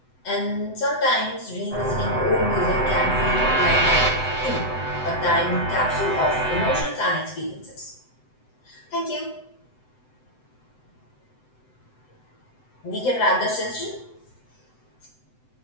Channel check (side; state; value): right; late; 7.9 ms